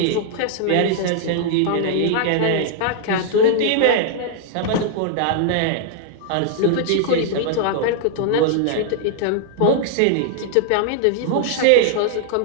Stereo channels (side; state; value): both; different; correlation -0.01